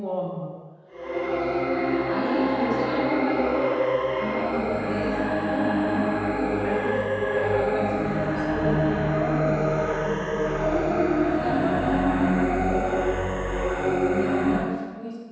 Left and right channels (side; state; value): both; identical; correlation 1.00